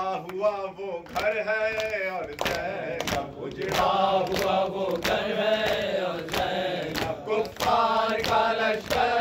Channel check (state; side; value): identical; both; correlation 1.00